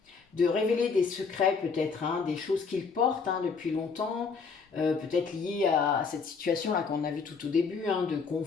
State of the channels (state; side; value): quieter; right; 5.2 dB